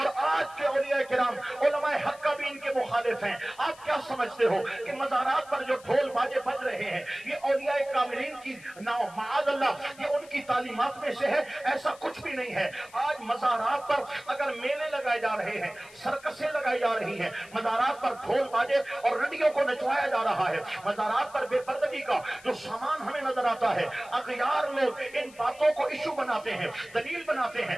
आज के औलिया किराम उलमाए हक का भी इनके मुखालिफ हैं। आप क्या समझते हो कि मज़ारात पर जो ढोल बाजे बज रहे हैं ये औलिया कामिलीन की माअज़ल्लाह ये उनकी तालीमात में से है? ऐसा कुछ भी नहीं है। आज मज़ारात पर अगर मेले लगाए जा रहे हैं, सर्कसें लगाई जा रही हैं, मज़ारात पर ढोल बाजे और रंडियों को नचवाया जा रहा है, मज़ारात पर बेपर्दगी का जो सामान हमें नजर आता है, अग़यार लोग इन बातों को इशू बनाते हैं, दलील बनाते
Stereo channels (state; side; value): noise; left; hiss, 22 dB below the sound